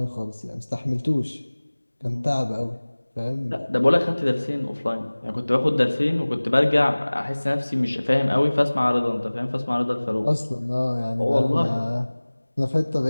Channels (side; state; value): both; inverted; correlation -1.00